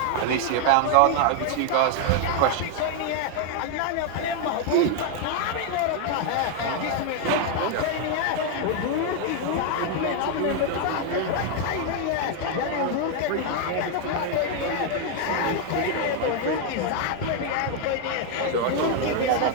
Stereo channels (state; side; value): different; both; correlation 0.00